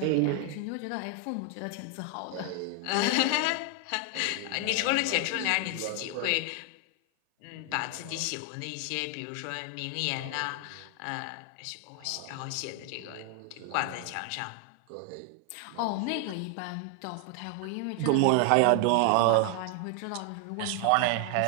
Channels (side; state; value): both; different; correlation 0.00